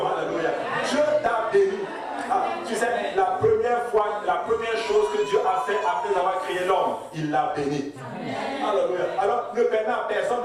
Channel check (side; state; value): both; identical; correlation 1.00